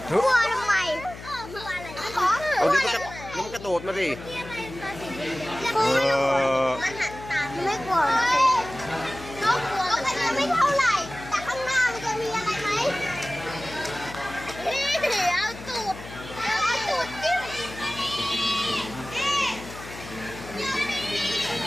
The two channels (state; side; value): noise; left; hum, 14 dB below the sound